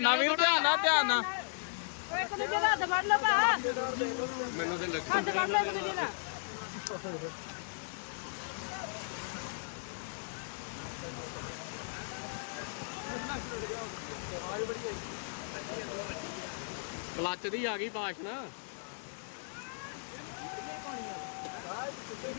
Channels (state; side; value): silent; right; digital silence